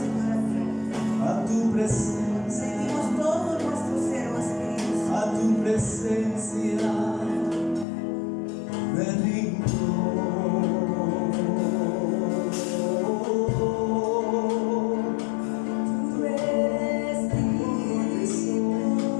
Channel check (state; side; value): drops out; right; at 7.9 s